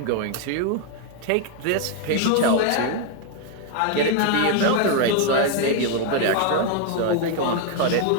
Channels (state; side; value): different; both; correlation 0.01